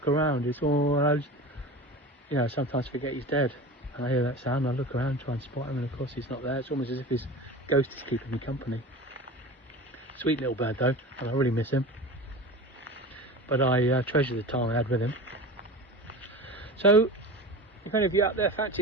around, it's all, I sometimes forget he's dead. And I hear that sound, and I look around, try and spot him, and of course he's not there. It's almost as if his ghost is keeping me company. Sweet little bird though, and I really miss him. But I treasure the time I had with him. So, if any of you out there fancy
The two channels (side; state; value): both; normal; correlation 0.32